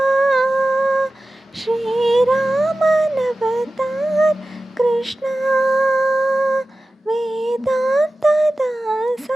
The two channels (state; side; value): normal; both; correlation 0.95